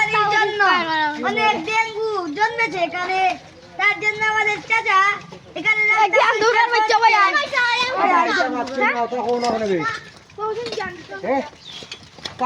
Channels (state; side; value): identical; both; correlation 1.00